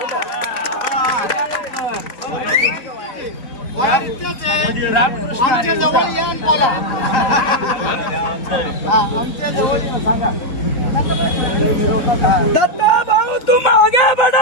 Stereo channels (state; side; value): late; right; 4.0 ms